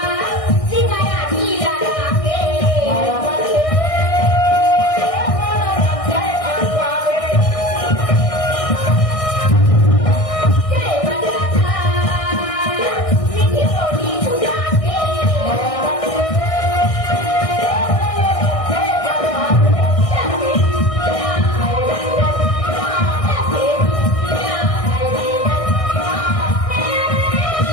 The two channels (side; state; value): right; late; 1.6 ms